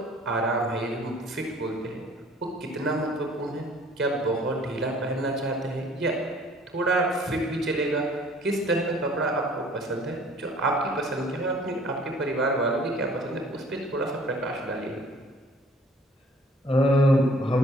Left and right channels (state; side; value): normal; both; correlation 0.54